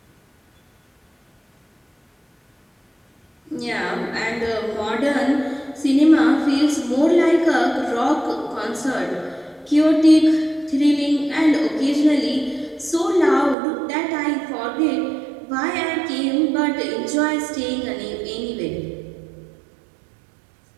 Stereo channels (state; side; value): drops out; left; at 13.6 s